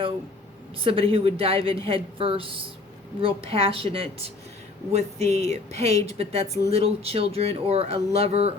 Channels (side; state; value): right; quieter; 3.4 dB